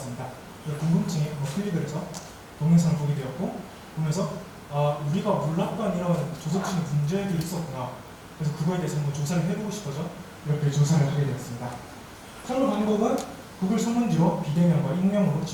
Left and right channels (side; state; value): both; identical; correlation 1.00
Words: 궁금증에 클릭을 해서 동영상을 보게 되었고, 보면서 우리가 몰랐던 이런 조석진의 문제들이 있었구나. 그래서 그거에 대해서 한번 조사를 해보고 싶어서 이렇게 조사를 하게 되었습니다. 선거 방법은 구글 설문지로 비대면과 익명으로